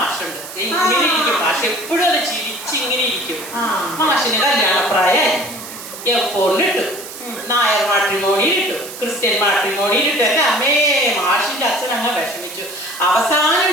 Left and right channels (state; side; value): noise; right; hiss, 12 dB below the sound